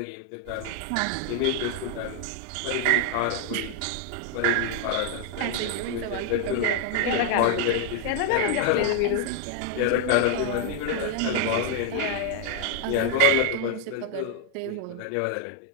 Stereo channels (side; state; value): both; different; correlation 0.00